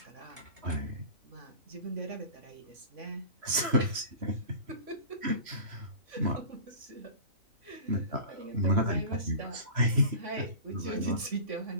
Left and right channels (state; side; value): late; left; 3.1 ms